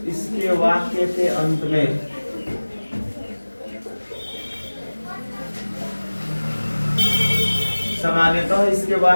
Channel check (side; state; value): both; inverted; correlation -1.00